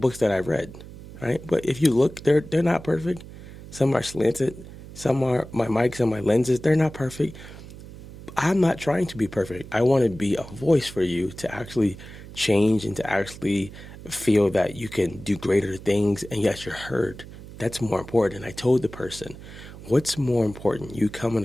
that I read, right? But if you look, they're not perfect. Some are slanted. Some are my mics and my lenses. They're not perfect. I'm not trying to be perfect. I want to be a voice for you to actually change and to actually feel that you can do greater things, and yes, you're heard. That's more important. I told the person, what's more important, you coming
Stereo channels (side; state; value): right; noise; hum, 15 dB below the sound